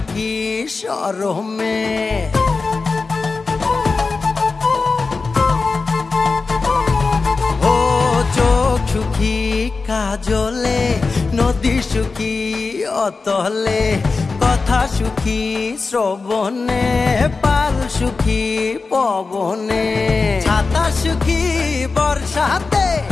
শরমে। ও চোখ সুখী কাজলে, নদী সুখী অতলে, কথা সুখী শ্রবণে, পাল সুখী পবনে, ছাতা সুখী বর্ষাতে,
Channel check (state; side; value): quieter; right; 4.2 dB